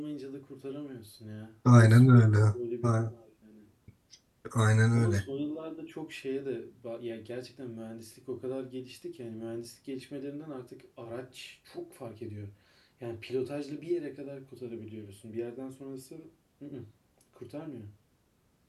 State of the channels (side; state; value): both; identical; correlation 1.00